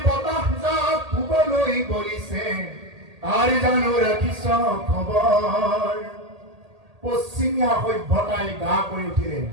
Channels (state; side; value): late; left; 1.8 ms